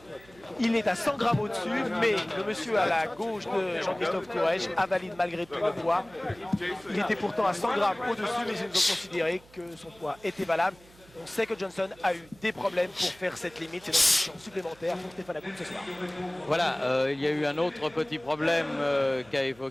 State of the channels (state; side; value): noise; right; hum, 26 dB below the sound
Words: Il est à 100 grammes au-dessus, mais le monsieur à la gauche de Jean-Christophe Courrèges valide malgré tout le poids. Il était pourtant à 100 grammes au-dessus, mais ils ont considéré que son poids était valable. On sait que Johnson a eu des problèmes pour faire cette limite. C'est donc une chance supplémentaire pour Stéphane Hakoun ce soir. Voilà, il y a eu un autre petit problème qu'a